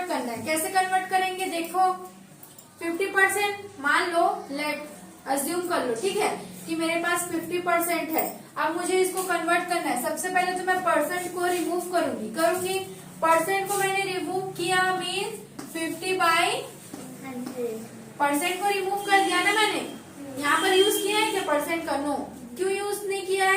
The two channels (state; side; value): identical; both; correlation 1.00